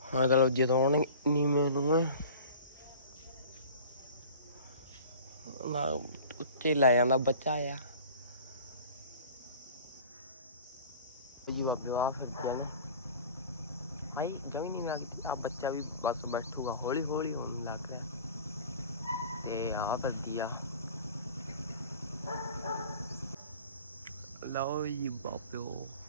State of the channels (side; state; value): both; inverted; correlation -0.43